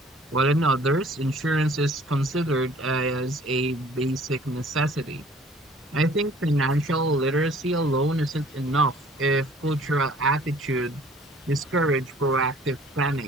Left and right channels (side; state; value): both; normal; correlation 0.53